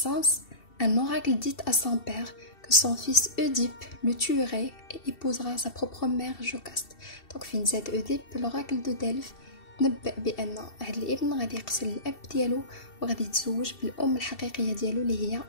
un oracle dit à son père que son fils Oedipe le tuerait et épousera sa propre mère Jocaste. Donc فين زاد Oedipe, l'oracle de Delphes نبأ بأن هاد الابن غادي يقتل الأب ديالو وغادي يتزوج بالأم الحقيقية ديالو اللي هي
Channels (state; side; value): late; right; 2.7 ms